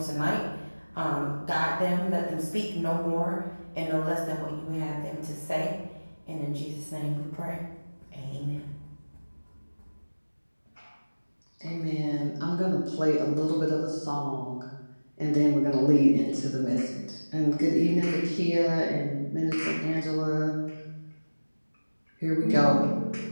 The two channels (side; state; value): both; inverted; correlation -1.00